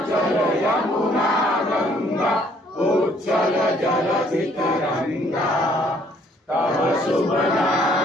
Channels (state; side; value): normal; both; correlation 0.63